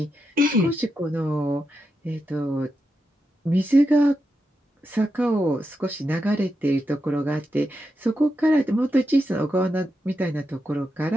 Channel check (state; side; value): normal; both; correlation 0.87